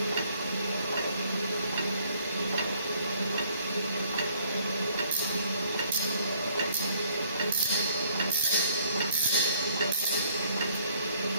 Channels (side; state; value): both; inverted; correlation -0.63